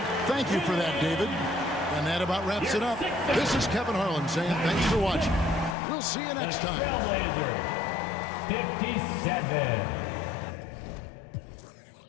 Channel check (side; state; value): right; drops out; at 5.8 s